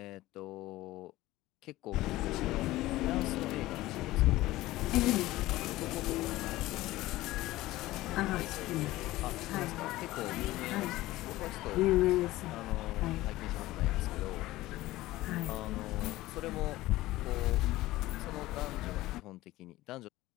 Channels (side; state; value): right; quieter; 17.3 dB